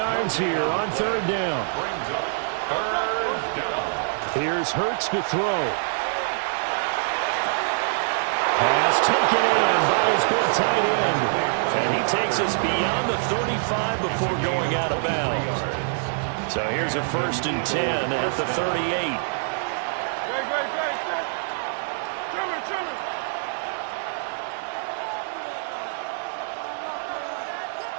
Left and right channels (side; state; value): left; silent; digital silence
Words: here on 3rd down. Here's Hurts to throw. Pass taken in by his big tight end. And he takes us beyond the 35 before going out of bounds. So here's a 1st and 10 at the 38.